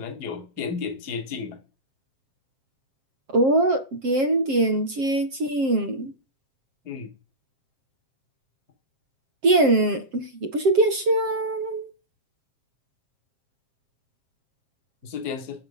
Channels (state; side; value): late; left; 7.5 ms